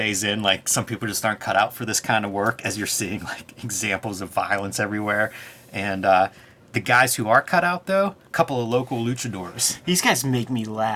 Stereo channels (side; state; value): both; identical; correlation 1.00